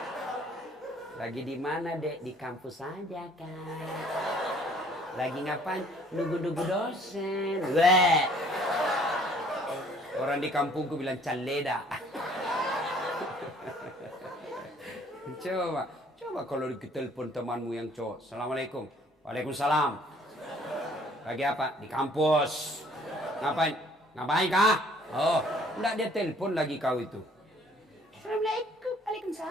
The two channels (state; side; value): normal; both; correlation 0.58